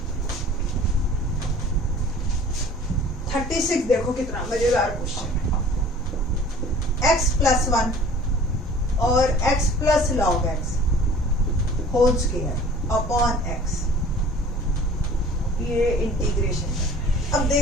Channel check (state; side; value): normal; both; correlation 0.47